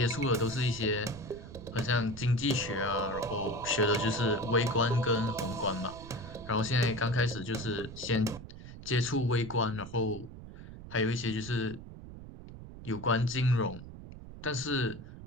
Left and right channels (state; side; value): noise; right; rumble, 14 dB below the sound